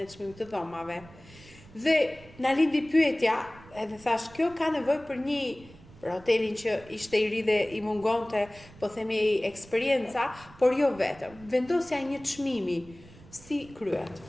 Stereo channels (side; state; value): right; noise; rumble, 21 dB below the sound